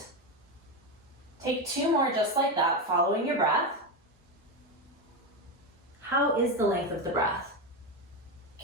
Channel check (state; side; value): normal; both; correlation 0.13